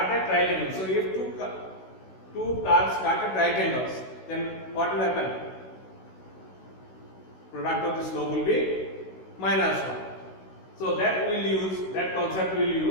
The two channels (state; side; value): late; right; 16 ms